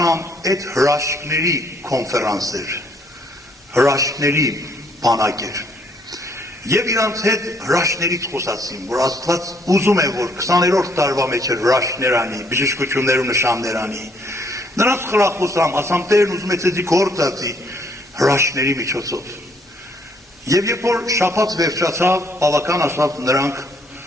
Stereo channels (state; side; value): normal; both; correlation 0.67